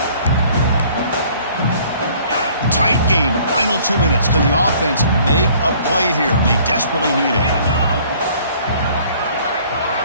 Tight game, final 2 minutes. Can the offense make a play here? And they desperately need it.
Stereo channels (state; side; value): inverted; both; correlation -0.56